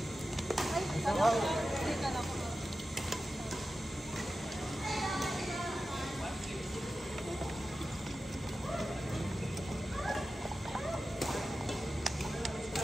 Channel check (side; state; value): both; normal; correlation 0.93